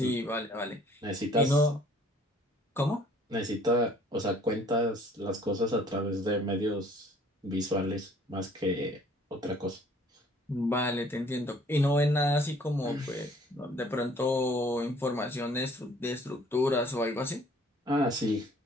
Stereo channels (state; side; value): normal; both; correlation 0.56